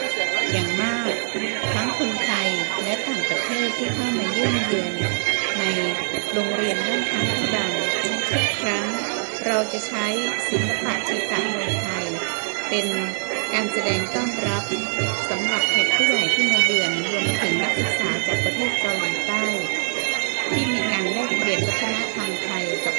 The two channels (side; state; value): left; silent; 63 dB below the other